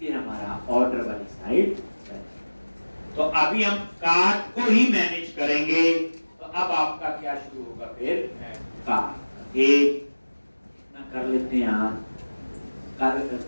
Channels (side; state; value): both; inverted; correlation -1.00